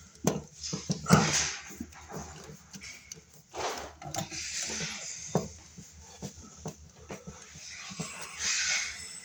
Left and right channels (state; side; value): identical; both; correlation 1.00